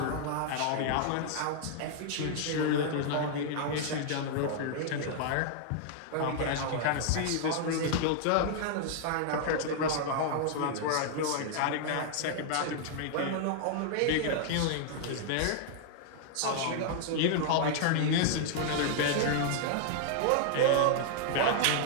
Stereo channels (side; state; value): both; different; correlation 0.00